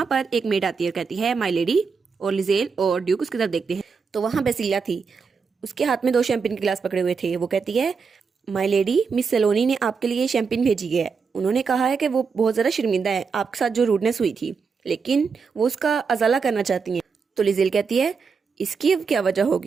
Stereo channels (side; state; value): left; quieter; 5.4 dB